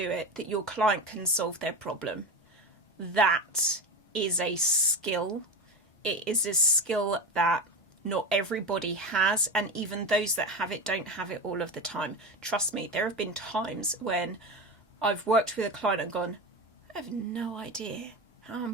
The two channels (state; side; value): normal; both; correlation 0.22